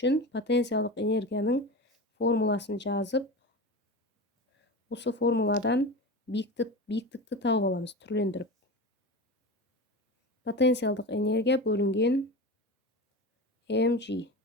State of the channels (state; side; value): normal; both; correlation 0.27